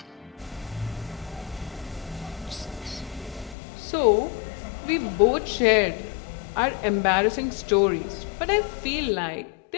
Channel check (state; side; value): drops out; right; at 3.6 s